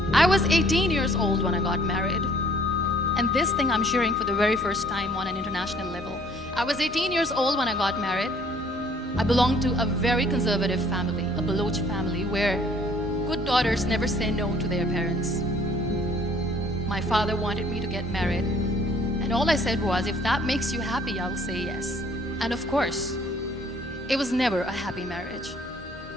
I was 18 years old when I got married. And this thing I'm sharing for the very first time on an international level. I was 18 years old when I got married. I belonged to a very conservative family, a Baloch family, where good daughters never say no to their parents. My father wanted me to get married. And all I said was, if that makes you happy, I'll say yes. And of course, it was never a happy marriage.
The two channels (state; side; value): normal; both; correlation 0.58